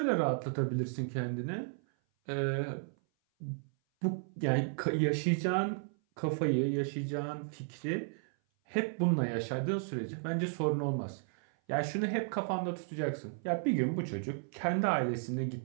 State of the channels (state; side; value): silent; left; 55 dB below the other